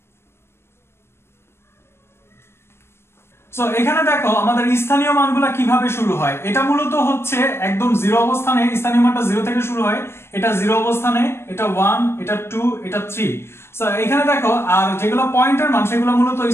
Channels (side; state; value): right; late; 0.12 ms